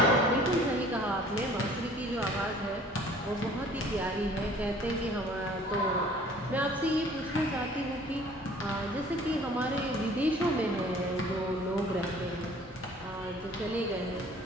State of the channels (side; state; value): both; normal; correlation 0.52